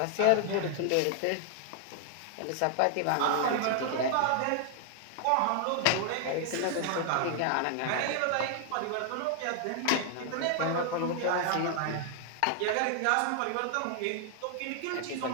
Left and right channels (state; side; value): different; both; correlation 0.00